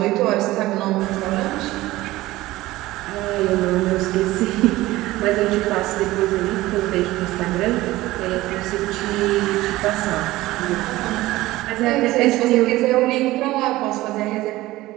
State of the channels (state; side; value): quieter; left; 17.7 dB